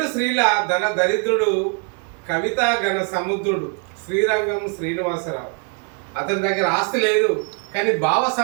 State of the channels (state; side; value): quieter; left; 35.5 dB